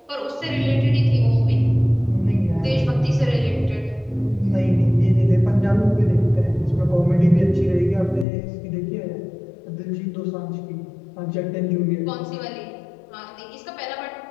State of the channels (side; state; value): right; drops out; at 8.2 s